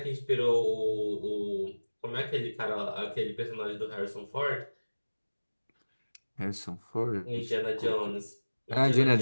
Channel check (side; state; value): both; inverted; correlation -1.00